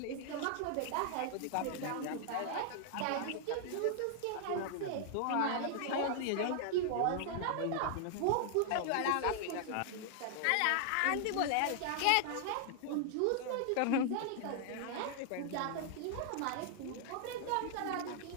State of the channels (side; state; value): both; different; correlation 0.00